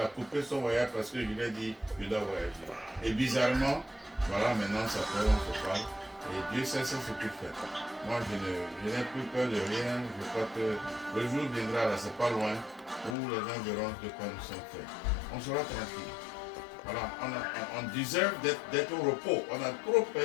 coupé son voyage parce que je lui ai dit je dois voyager. Et bizarrement, voilà, maintenant ça fait, on se parle. Et Dieu sait ce qu'il fait. Moi, je n'ai plus peur de rien. Je crois que le jour viendra, là, c'est pas loin, où les gens verront de quoi nous sommes faits. On sera tranquille. Voilà, on deserve d'être au repos. On a trop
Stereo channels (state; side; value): drops out; right; at 13.2 s